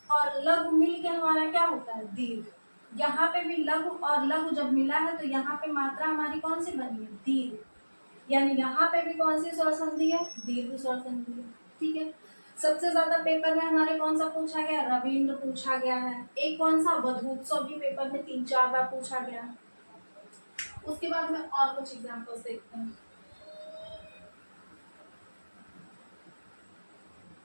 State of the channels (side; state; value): both; inverted; correlation -1.00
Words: और लघु मिल के हमारा क्या होता है, दीर्घ। यहाँ पे भी लघु और लघु जब मिला है तो यहाँ पे मात्रा हमारी कौन सी बनी है, दीर्घ। यानी यहाँ पे भी कौन सी स्वर संधि है, दीर्घ स्वर संधि है, ठीक है। सबसे ज्यादा पेपर में हमारे कौन सा पूछा गया, रविंद्र पूछा गया है। एक कौन सा, वधूत्सव भी पेपर में 3-4 बार पूछा गया है। उसके बाद में और कुछ एग्जांपल्स देखते हैं।